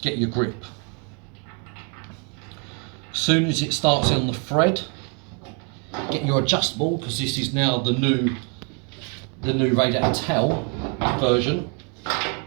grip. As soon as it starts on the thread, get your adjustable, because this is now the new the new Radiator towel version.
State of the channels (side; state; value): left; quieter; 37.0 dB